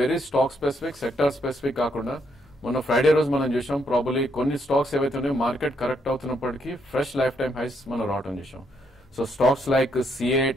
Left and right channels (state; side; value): normal; both; correlation 0.75